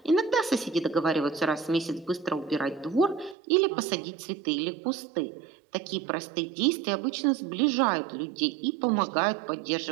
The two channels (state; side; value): drops out; left; at 3.4 s